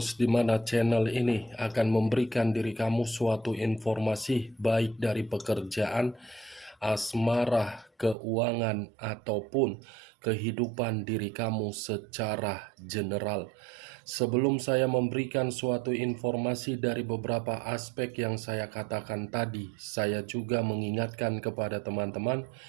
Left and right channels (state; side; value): drops out; left; at 8.2 s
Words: di mana channel ini akan memberikan diri kamu suatu informasi baik dari pekerjaan, asmara, keuangan, ataupun kehidupan diri kamu secara general. Sebelum saya memberikan suatu informasi dari beberapa aspek yang saya katakan tadi, saya juga mengingatkan kepada teman-teman,